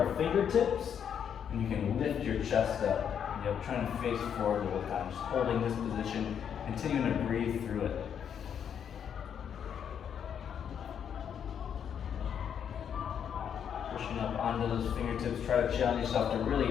fingertips, and you can lift your chest up. Yep, trying to face forward the whole time, just holding this position, continuing to breathe through it. Pushing up onto those fingertips, try to challenge yourself to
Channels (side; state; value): right; quieter; 8.2 dB